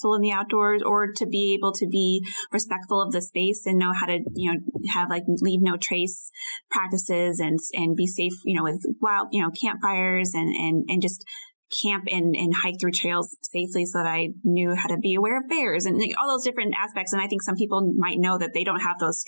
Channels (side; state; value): both; inverted; correlation -1.00